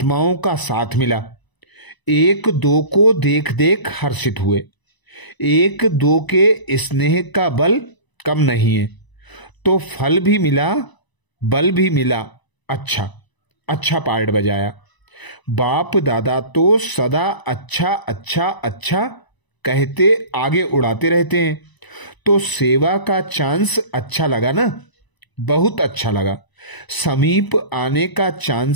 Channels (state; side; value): late; right; 1.0 ms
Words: का साथ मिला। एक दो को देख देख हर्षित हुए। एक दो के स्नेह का बल कम नहीं है, तो फल भी मिला, बल भी मिला। अच्छा अच्छा पार्ट बजाया। बाप दादा तो सदा अच्छा अच्छा अच्छा कहते आगे उड़ाते रहते हैं। तो सेवा का चांस अच्छा लगा ना? बहुत अच्छा लगा। समीप आने का